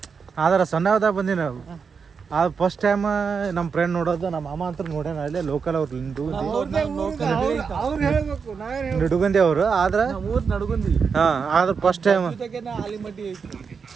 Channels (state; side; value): quieter; left; 5.8 dB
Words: ಆದ್ರೆ ಸಣ್ಣವದಾಗ ಬಂದಿ ನಾವು. ಅದು ಫಸ್ಟ್ ಟೈಮ್ ನಮ್ಮ ಫ್ರೆಂಡ್ ನೋಡೋದು. ನಮ್ಮ ಅಮ್ಮ ಅಂತ ನೋಡ್ಯಾನ ಅಲ್ಲೇ ಲೋಕಲ್. ಅವ್ರು ನಿಡುಗಂದಿ ಅವರು. ಆದ್ರೆ ಆದ್ರೆ ಫಸ್ಟ್ ಟೈಮ್.